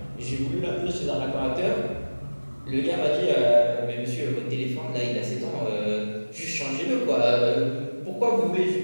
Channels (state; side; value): inverted; both; correlation -1.00